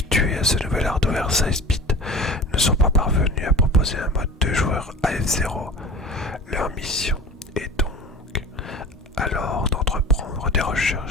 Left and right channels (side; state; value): both; normal; correlation 0.37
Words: à ce nouvel hardware 16-bit, ne sont pas parvenus à proposer un mode de joueur à F-Zero. Leur mission est donc alors d'entreprendre des